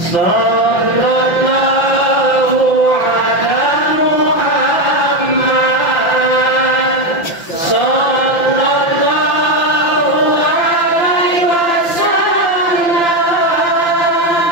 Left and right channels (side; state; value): right; late; 5.9 ms